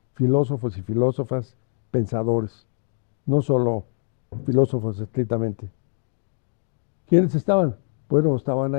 filósofos y filósofas pensadores, no solo filósofos estrictamente. ¿Quiénes estaban? Bueno, estaban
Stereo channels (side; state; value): right; silent; digital silence